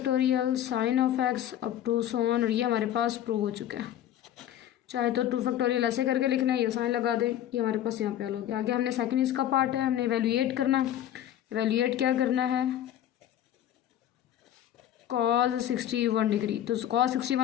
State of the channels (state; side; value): quieter; right; 11.4 dB